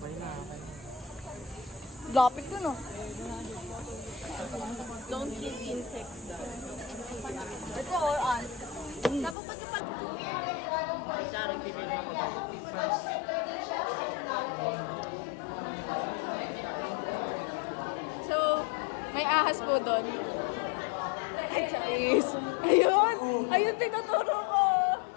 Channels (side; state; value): right; drops out; at 9.3 s